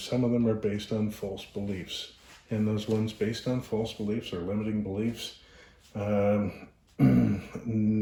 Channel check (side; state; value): both; identical; correlation 1.00